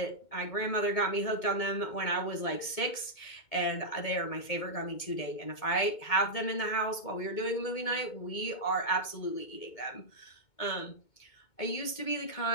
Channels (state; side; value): late; right; 2.2 ms